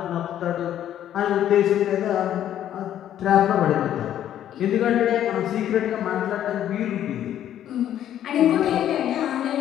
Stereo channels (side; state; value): right; quieter; 11.1 dB